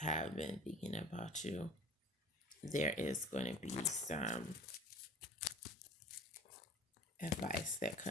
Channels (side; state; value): both; normal; correlation 0.41